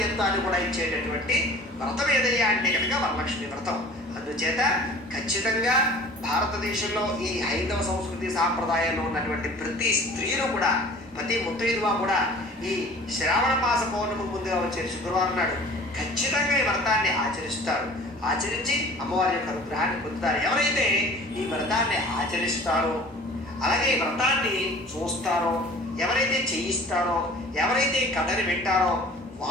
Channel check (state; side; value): normal; both; correlation 0.46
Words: కూడా ఇచ్చేటటువంటి వ్రతం ఏదయ్యా అంటే కనుక వరలక్ష్మి వ్రతం. అందుచేత ఖచ్చితంగా భారతదేశంలో ఈ హైందవ సంస్కృతి సాంప్రదాయంలో ఉన్నటువంటి ప్రతి స్త్రీలు కూడా, ప్రతి ముత్తైదువ కూడా ఈ శ్రావణ మాస పౌర్ణమి ముందుగా వచ్చే శుక్రవారం నాడు ఖచ్చితంగా ఈ వ్రతాన్ని ఆచరిస్తారు. ఆచరించి అమ్మవారి యొక్క అనుగ్రహాన్ని పొందుతారు. ఎవరైతే ఈ వ్రతాన్ని ఆచరిస్తారో, అలాగే ఈ వ్రతాన్ని చూస్తారో, ఎవరైతే చేయిస్తారో, ఎవరైతే కథని వింటారో